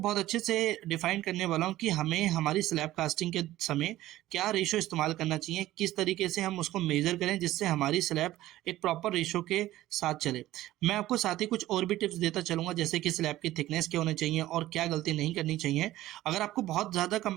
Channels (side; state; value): left; quieter; 15.3 dB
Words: अच्छे से डिफाइन करने वाला हूँ कि हमें हमारी स्लैब कास्टिंग के समय क्या रेशो इस्तेमाल करना चाहिए, किस तरीके से हम उसको मेजर करें जिससे हमारी स्लैब एक प्रॉपर रेशो के साथ चले। मैं आपको साथ ही कुछ और भी टिप्स देता चलूंगा जैसे कि स्लैब की थिकनेस क्या होनी चाहिए और क्या गलती नहीं करनी चाहिए। अगर आपको बहुत ज़्यादा